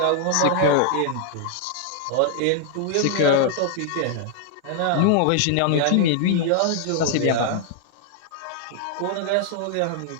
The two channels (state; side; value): different; both; correlation 0.00